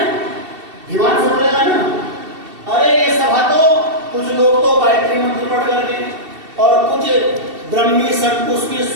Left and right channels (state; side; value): late; left; 2.7 ms